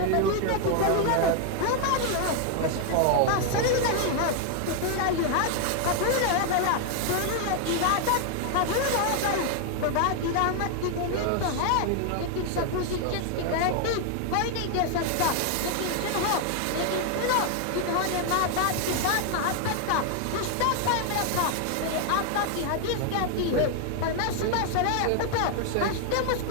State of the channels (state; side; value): different; both; correlation 0.00